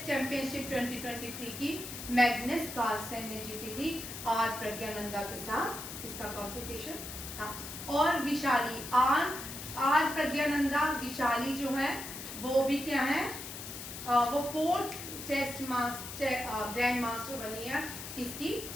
चैंपियनशिप 2023 की मैग्नस कार्लसन ने जीती थी आर प्रज्ञानंदा के साथ, इसका कंपटीशन था। और विशाली आर प्रज्ञानंदा विशाली जो है वो भी क्या है, वो 4th चेस ग्रैंड मास्टर बनी है किसकी,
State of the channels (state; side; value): noise; left; hiss, 9 dB below the sound